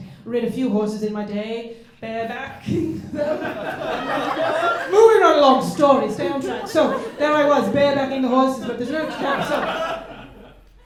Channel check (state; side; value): identical; both; correlation 1.00